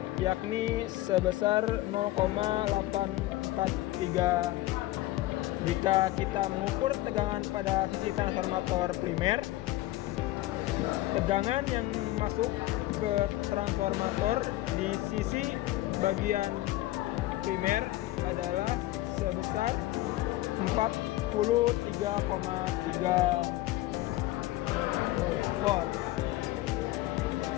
yakni sebesar 0,843. Jika kita mengukur tegangan pada sisi transformator primer, tegangan yang masuk ke transformator di sisi bagian primer adalah sebesar 43,3 volt.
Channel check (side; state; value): right; quieter; 16.7 dB